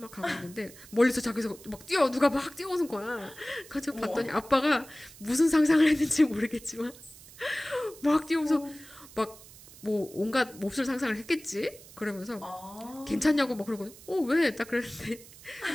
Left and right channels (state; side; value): noise; right; hiss, 20 dB below the sound